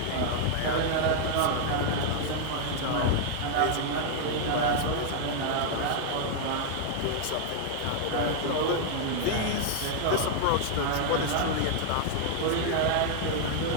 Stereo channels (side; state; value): both; different; correlation 0.00